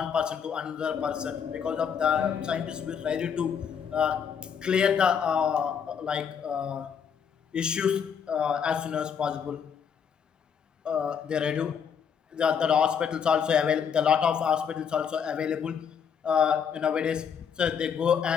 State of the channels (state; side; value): quieter; right; 7.3 dB